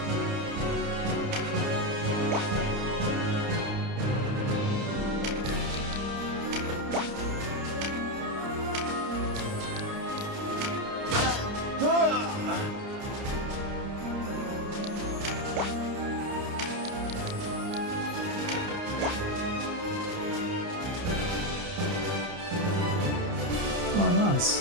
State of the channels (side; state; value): left; late; 29 ms